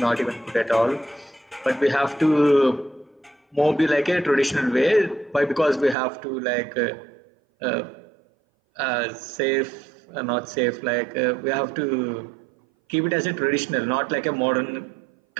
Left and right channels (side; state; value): left; drops out; at 6.0 s